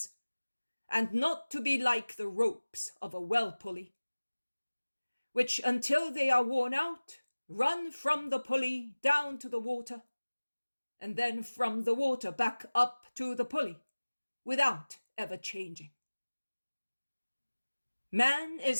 and not to be like the ropes of a well pulley, which until they are worn out, run from the pulley down to the water, and then from the water back up to the pulley, without ever changing. Man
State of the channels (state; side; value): inverted; both; correlation -1.00